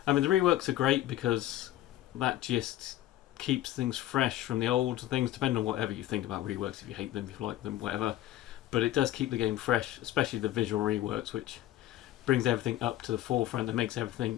I mean, the reworks are great because that just keeps things fresh from the old things, depending on whatever you think about reworks, if you hate them, if you like them, whatever. But it does keep the game fresh, especially the visual reworks, which brings everything up to the forefront and makes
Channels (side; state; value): right; quieter; 13.9 dB